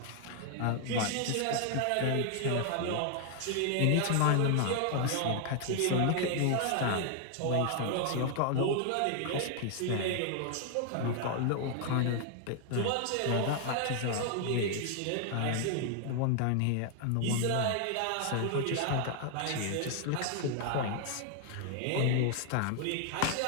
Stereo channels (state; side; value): different; both; correlation 0.00